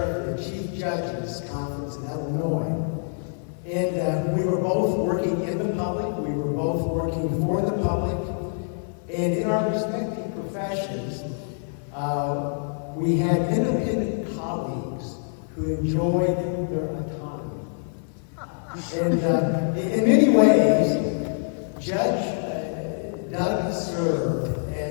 the Chief Judges Conference in Illinois. And we were both working in the public, we were both working for the public, and in our respective professions, we had independent colleagues who enjoyed their autonomy. And in many ways, Judge Doug served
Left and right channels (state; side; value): silent; right; 56 dB below the other